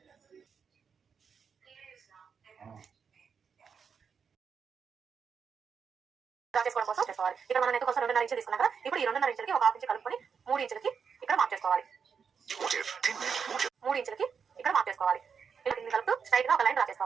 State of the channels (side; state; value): left; quieter; 6.4 dB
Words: డ్రా చేసుకోవడం కోసం చేసుకోవాలి. ఇక్కడ మనం నెక్ కోసం 2.5 ఇంచులు తీసుకున్నాం కదా, ఇప్పుడు ఈ 2.5 ఇంచులకి ఒక హాఫ్ ఇంచ్ కలుపుకొని 3 ఇంచులకి ఇక్కడ మార్క్ చేసుకోవాలి. 3 ఇంచులకి ఇక్కడ మార్క్ చేసుకోవాలి. ఇలా దీన్ని కలుపుతూ స్ట్రైట్ గా ఒక లైన్ డ్రా